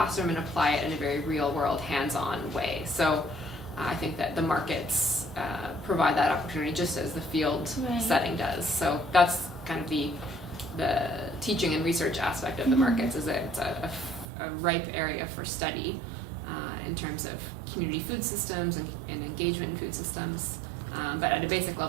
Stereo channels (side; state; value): left; drops out; at 14.2 s